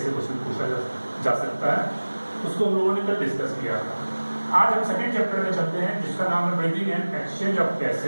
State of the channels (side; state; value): both; inverted; correlation -1.00